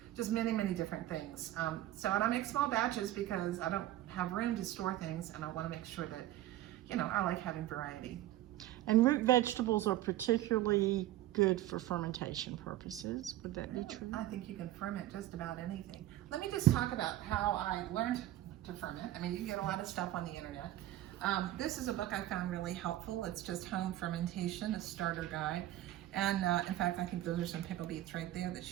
just many, many different things. And I make small batches because I don't have room to store things, and I want to make sure that, you know, I like having variety. And root vegetables are particularly good for fermentation purposes. Would that be true? I think you can ferment just about anything. Let me just talk about how I learned to ferment. I mean, you can get a lot of stuff on the internet. This is a book I found really helpful. It's just Home Fermentation, a starter guide. And in fact, I think those are some pickle beets right there that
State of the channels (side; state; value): left; quieter; 14.3 dB